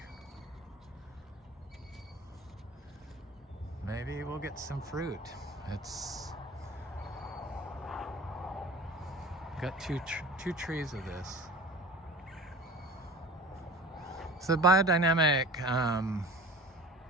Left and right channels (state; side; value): normal; both; correlation 0.39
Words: maybe we'll get some fruit. It's got two trees of this. So biodynamic